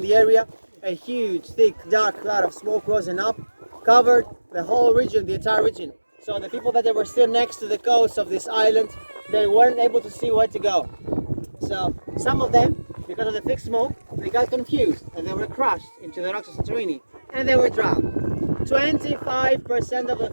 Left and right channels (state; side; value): inverted; both; correlation -1.00